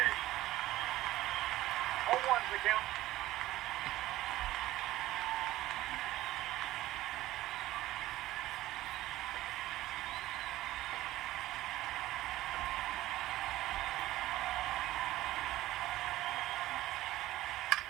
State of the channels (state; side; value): quieter; left; 15.9 dB